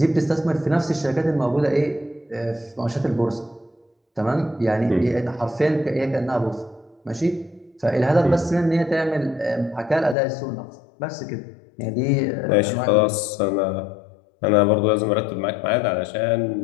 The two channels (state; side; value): drops out; right; at 10.2 s